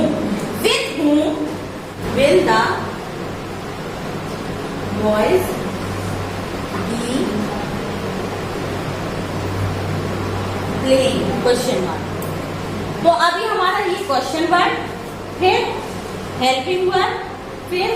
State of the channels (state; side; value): identical; both; correlation 1.00